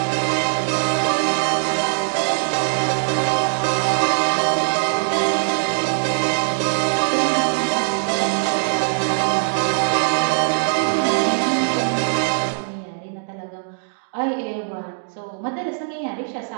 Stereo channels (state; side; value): silent; left; digital silence